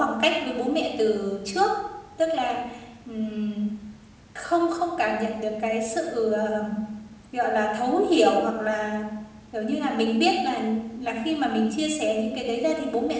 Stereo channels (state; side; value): identical; both; correlation 1.00